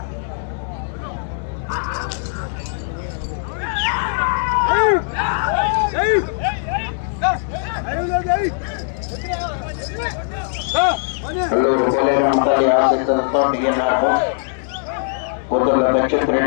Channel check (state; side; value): silent; right; digital silence